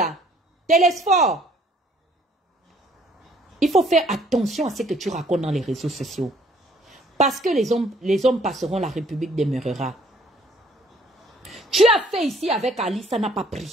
Télésphore. Il faut faire attention à ce que tu racontes dans les réseaux sociaux. Parce que les hommes passeront, la République demeurera. Tu as fait ici avec Ali, ça n'a pas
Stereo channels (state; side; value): normal; both; correlation 0.61